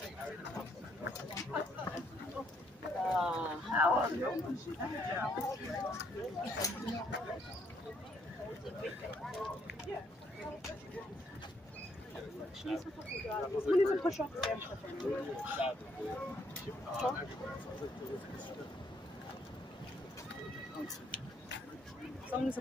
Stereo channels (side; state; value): both; normal; correlation 0.71